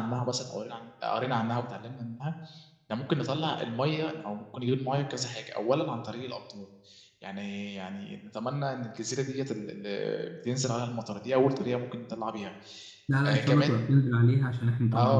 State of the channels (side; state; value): both; identical; correlation 1.00